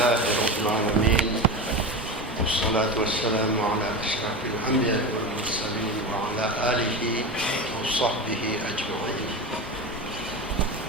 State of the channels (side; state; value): both; normal; correlation 0.24